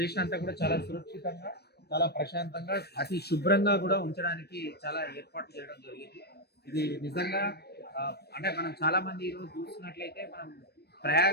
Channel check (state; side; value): late; right; 0.47 ms